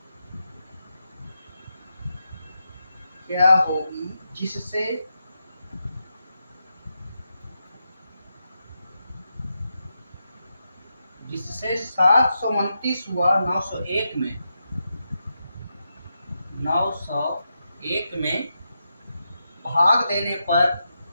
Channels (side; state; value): both; inverted; correlation -0.86